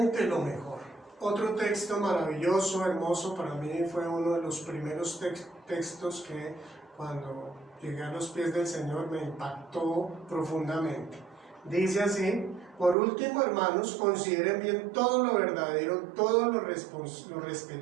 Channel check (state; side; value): drops out; left; at 13.0 s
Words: lo mejor. Otro texto maravilloso, hermoso, para mí fue uno de los primeros textos que cuando llegué a los pies del Señor me impactó profundamente. Dice así: por último, hermanos, consideren bien todo lo verdadero, todo lo